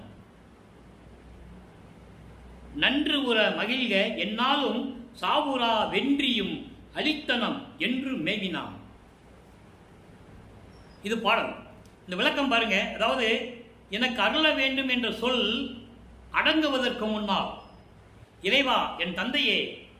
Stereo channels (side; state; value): both; identical; correlation 1.00